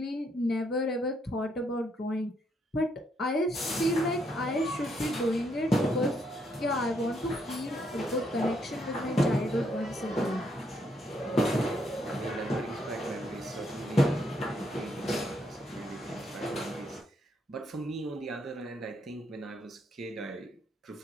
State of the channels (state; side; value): normal; both; correlation 0.74